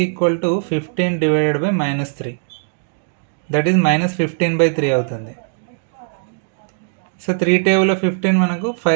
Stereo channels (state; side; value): silent; left; digital silence